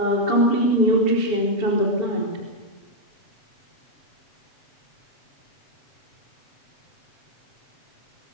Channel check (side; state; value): right; late; 7.0 ms